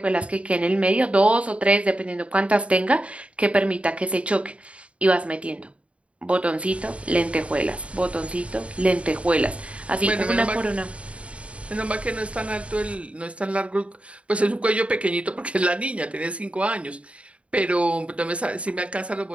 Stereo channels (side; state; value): left; late; 0.062 ms